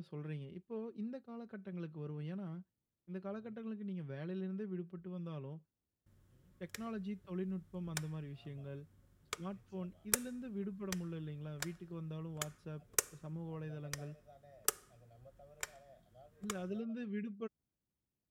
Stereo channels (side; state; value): both; identical; correlation 1.00